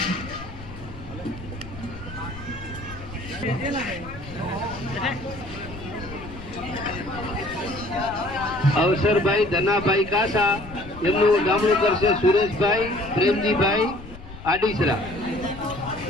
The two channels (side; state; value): left; noise; rumble, 15 dB below the sound